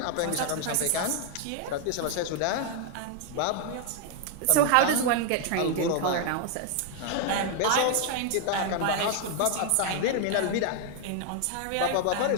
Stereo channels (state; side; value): different; both; correlation 0.00